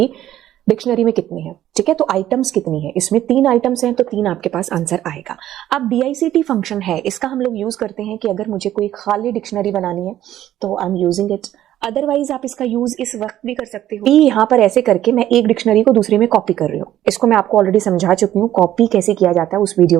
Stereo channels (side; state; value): left; quieter; 12.6 dB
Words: डिक्शनरी में कितने हैं। ठीक है, तो आइटम्स कितनी है, इसमें 3 आइटम्स हैं तो 3 आपके पास आंसर आएगा। अब DICT फंक्शन है, इसका हम लोग यूज करते हैं कि अगर मुझे कोई खाली डिक्शनरी बनानी है तो I am using it. Otherwise आप इसका यूज इस वक्त भी कर सकते हो। यहाँ पर ऐसे करके मैं एक डिक्शनरी को दूसरे में कॉपी कर रही हूँ। इसको मैं आपको ऑलरेडी समझा चुकी हूँ कॉपी कैसे किया जाता है उस